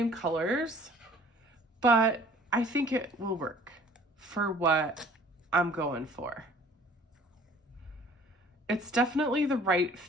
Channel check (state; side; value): normal; both; correlation 0.53